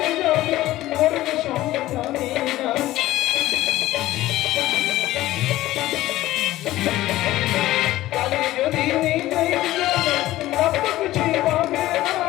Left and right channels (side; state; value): right; quieter; 15.9 dB